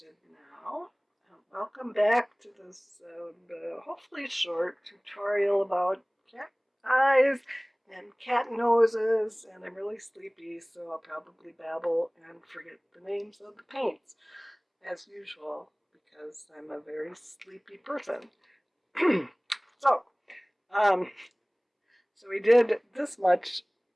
now. Welcome back to this hopefully short tutorial about cat eyes and cat noses, and I'm really sleepy, so I'll probably babble and forget the names of the paints, as usual, because I'm a very sleepy person. so, um, so we did this much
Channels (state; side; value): identical; both; correlation 1.00